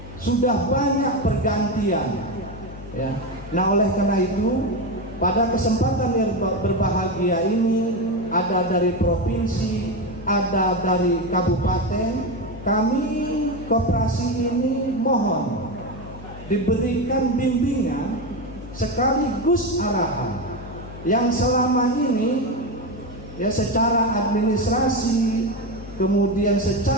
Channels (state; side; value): noise; left; hum, 14 dB below the sound